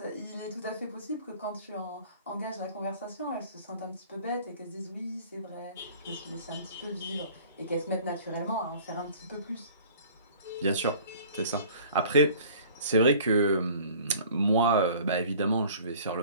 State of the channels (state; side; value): inverted; both; correlation -0.48